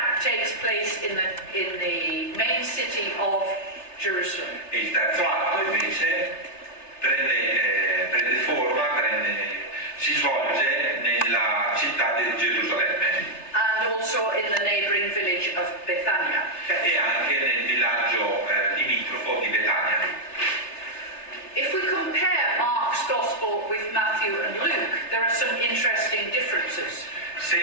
takes place in the main city of Jerusalem. E il terzo atto invece prende forma, si svolge nella città di Gerusalemme. And also in the neighboring village of Bethania. E anche nel villaggio limitrofo di Betania. If we compare Mark's Gospel with Matthew and Luke, there are some interesting differences.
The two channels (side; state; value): right; late; 3.3 ms